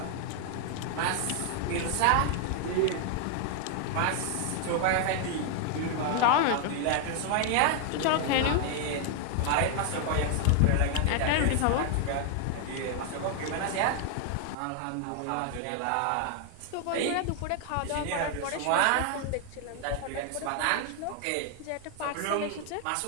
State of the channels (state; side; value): different; both; correlation 0.00